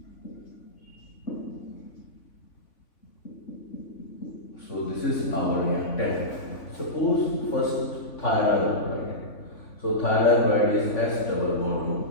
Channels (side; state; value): right; late; 3.5 ms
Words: So this is our reactant. Suppose first thionyl chloride. So thionyl chloride is S double bond